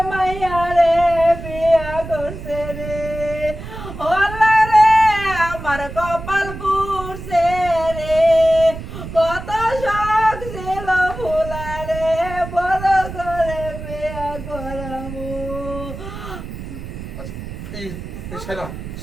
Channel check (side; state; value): right; noise; rumble, 10 dB below the sound